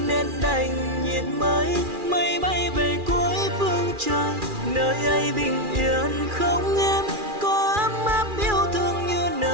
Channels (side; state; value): left; late; 2.4 ms